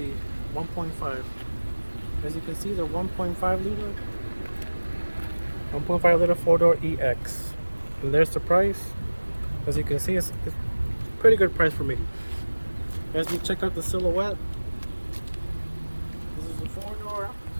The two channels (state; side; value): inverted; both; correlation -1.00